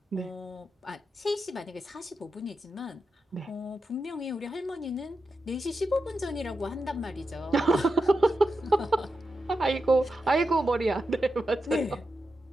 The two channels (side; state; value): both; normal; correlation 0.89